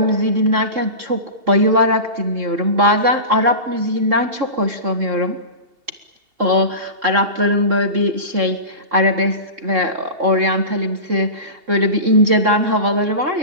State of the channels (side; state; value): left; late; 2.7 ms